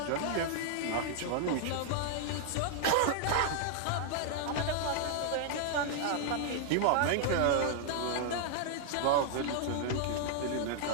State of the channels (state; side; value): different; both; correlation 0.00